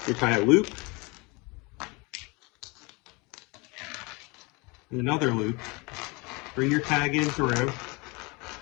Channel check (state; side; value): quieter; right; 27.3 dB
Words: You tie a loop, and another loop. Bring your tag in through.